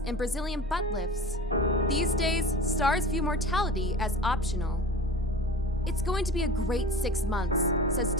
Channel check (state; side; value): normal; both; correlation 0.36